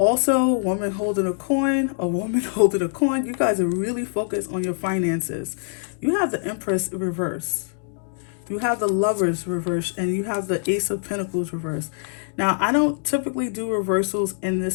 woman holding a coin. A woman holding a coin. You guys are really focused on your finances. You have the Empress reverse. You have the Lovers reverse, and you have the Ace of Pentacles reverse. Now, I don't typically do reversals in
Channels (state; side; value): silent; right; digital silence